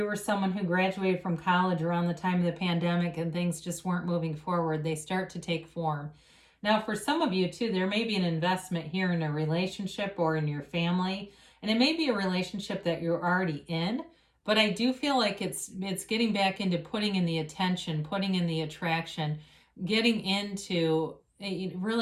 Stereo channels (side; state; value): both; identical; correlation 1.00